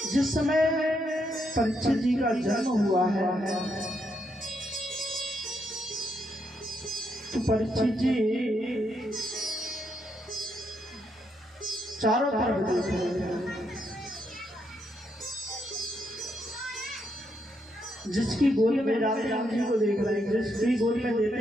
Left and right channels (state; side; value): normal; both; correlation 0.78